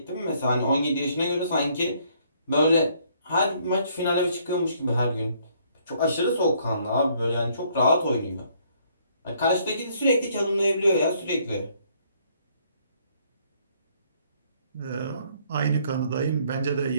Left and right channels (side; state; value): both; inverted; correlation -0.66